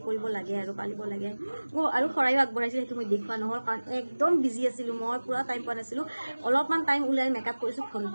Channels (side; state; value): both; inverted; correlation -1.00